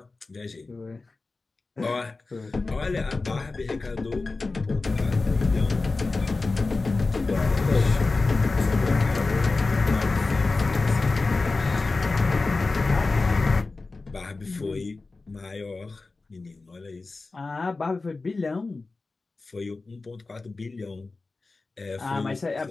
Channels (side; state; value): right; quieter; 3.6 dB